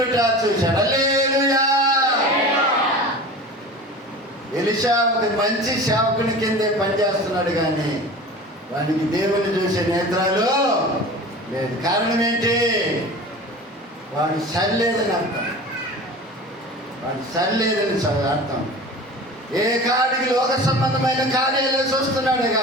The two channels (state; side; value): normal; both; correlation 0.36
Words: చూశాడు. హల్లెలూయా. ఎలీషా ఒక మంచి సేవకుని కిందే పనిచేస్తున్నాడు, కానీ వానికి దేవుని చూసే నేత్రాలు లేదు. కారణం ఏంటి? వాడు సరిలేదని అర్థం. వాడు సరిలేదని అర్థం. ఏ కాడికి లోక సంబంధమైన కార్యాలు చూస్తున్నాడు,